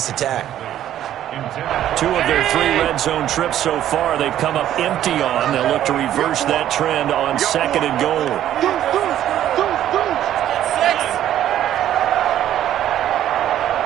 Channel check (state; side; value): quieter; left; 11.7 dB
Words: attack. 2 of their 3 red zone trips so far, they've come up empty on. They'll look to reverse that trend on 2nd and goal.